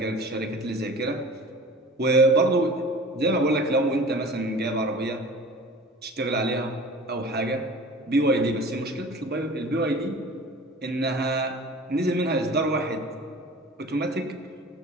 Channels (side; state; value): both; normal; correlation 0.41